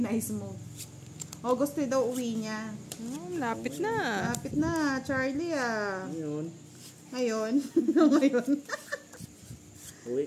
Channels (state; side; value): identical; both; correlation 1.00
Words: move. August daw uwi niya. Lapit na. Lapit na, Charlie ah. Ngayon. Ngayon. Ngayon. Uwi